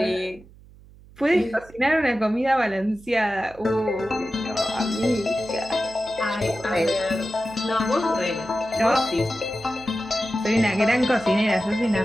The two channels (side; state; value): right; noise; hum, 23 dB below the sound